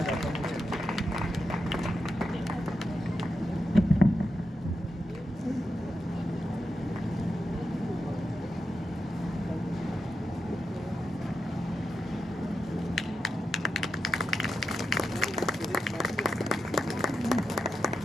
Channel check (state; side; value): normal; both; correlation 0.87